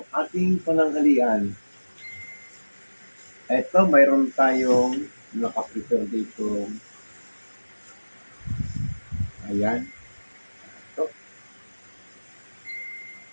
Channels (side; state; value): both; inverted; correlation -1.00